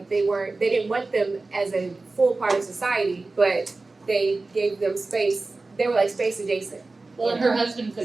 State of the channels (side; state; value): left; quieter; 3.5 dB